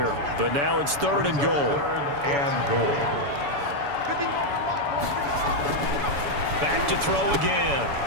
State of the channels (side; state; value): left; late; 7.0 ms